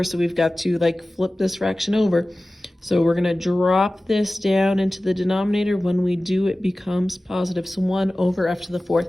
So we've got to like flip this fraction over. So we're going to drop this down into the denominator. When we do, it becomes positive. So 1 over F to the fourth.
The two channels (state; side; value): normal; both; correlation 0.96